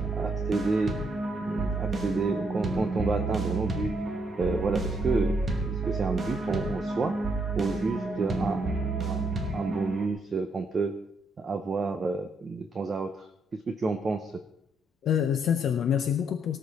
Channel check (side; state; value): both; normal; correlation 0.74